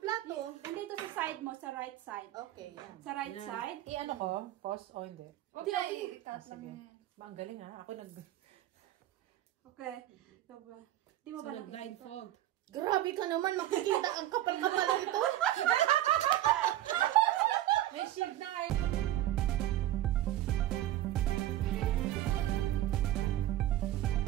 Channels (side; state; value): left; quieter; 13.8 dB